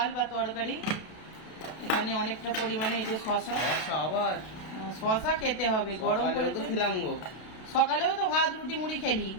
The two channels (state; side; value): late; right; 32 ms